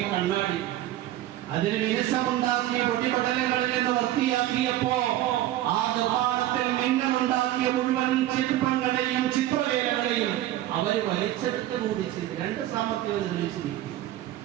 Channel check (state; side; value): quieter; left; 14.1 dB